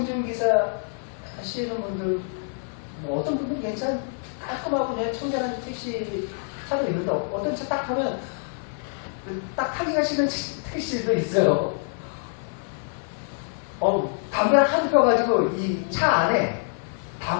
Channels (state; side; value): silent; right; 58 dB below the other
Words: 하시는 분들, 뭐 어떤 분들은 괜찮, 깔끔하고 그냥 청결한 택시 차도 있는데, 어떤 차 딱 타면 딱 타기가 싫은 택시도 있어요. 담배를 하도 펴가지고 이 차 안에